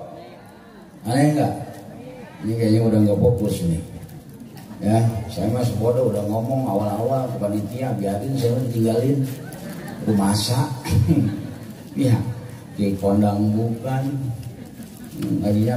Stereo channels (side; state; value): both; identical; correlation 1.00